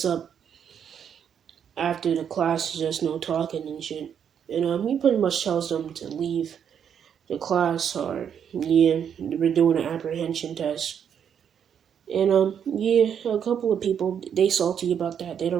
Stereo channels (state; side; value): quieter; left; 8.2 dB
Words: up after the class is just no talking and shit. And he pretty much tells them to leave the class, or yeah, we're doing an apprehension test. And yeah, a couple of people, they salty about that. They